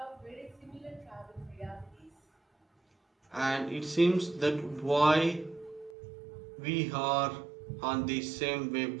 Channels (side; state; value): left; drops out; at 6.0 s